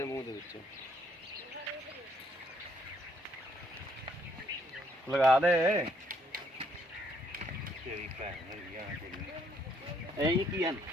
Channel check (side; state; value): both; normal; correlation 0.69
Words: मुँह दे विच, लगा दे। की है